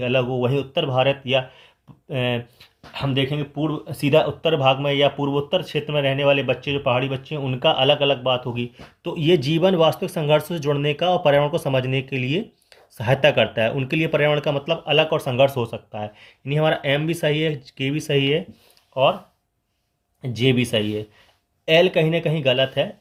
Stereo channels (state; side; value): identical; both; correlation 1.00